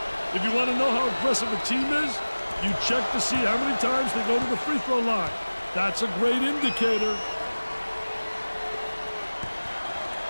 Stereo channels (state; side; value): inverted; both; correlation -1.00